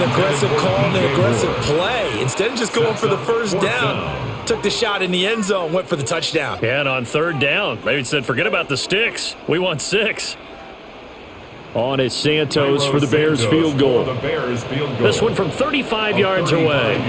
aggressive call and an aggressive play. Instead of just going for the first down, took the shot in the end zone, went for the touchdown. Yeah, and on 3rd down, maybe said, forget about the sticks. We want 6. On is Santos for the Bears field goal. This one from 35 yards away.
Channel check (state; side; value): identical; both; correlation 1.00